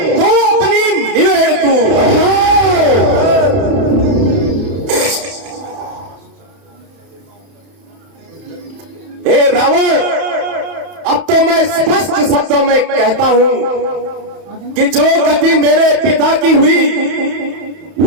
तू अपनी निवेड़ तू। हे रावण, अब तो मैं स्पष्ट शब्दों में कहता हूं कि जो गति मेरे पिता की हुई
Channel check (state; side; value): late; left; 31 ms